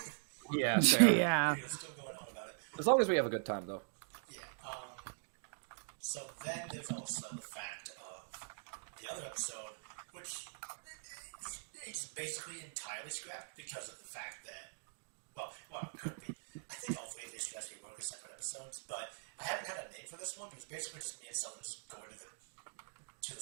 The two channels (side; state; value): left; silent; digital silence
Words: Yeah, fair. Yeah. We're still going on about it. As long as we have a good time, though. Yeah. So then there's also the fact of the other episode, which it's basically entirely scrapped because of the fact that, well, it could be. I think all three of these should actually work as separate episodes, but I haven't had a name for this one because basically just me and someone just going to the